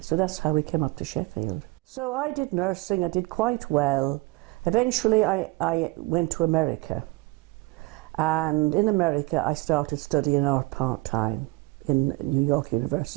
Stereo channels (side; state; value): left; quieter; 23.2 dB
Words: so that's how we came up to Sheffield. So I did nursing, I did quite well. Eventually I went to America, and in America I started studying art part-time in New York